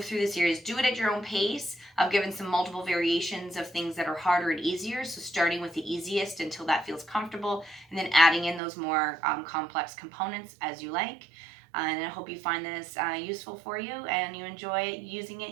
through the series. Do it at your own pace. I've given some multiple variations of things that are harder and easier, so starting with the easiest until that feels comfortable, and then adding in those more complex components as you like. And I hope you find this useful for you and you enjoy using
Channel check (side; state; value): left; drops out; at 8.6 s